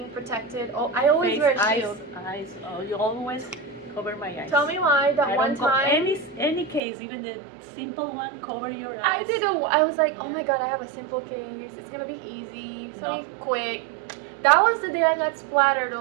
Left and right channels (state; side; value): drops out; left; at 6.8 s